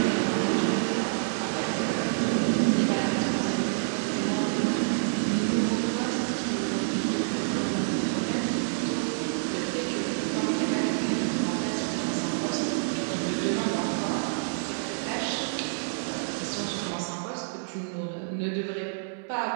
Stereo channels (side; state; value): left; silent; 59 dB below the other